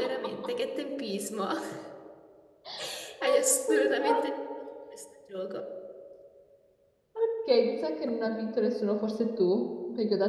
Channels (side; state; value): both; identical; correlation 1.00